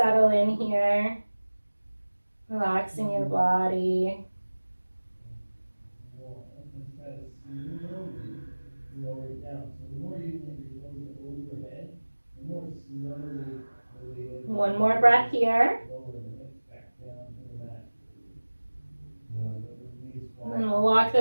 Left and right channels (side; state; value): both; inverted; correlation -1.00